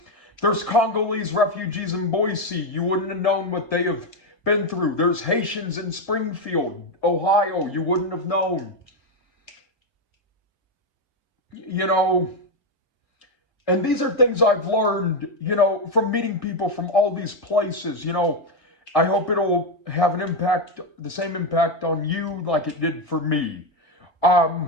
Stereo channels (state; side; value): late; right; 1.6 ms